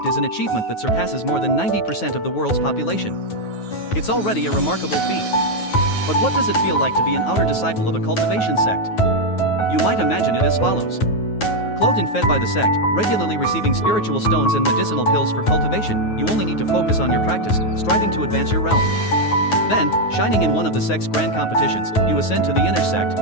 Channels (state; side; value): late; right; 9.4 ms